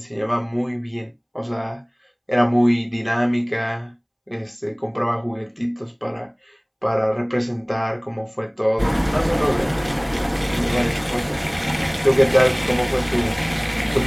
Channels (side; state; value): both; identical; correlation 1.00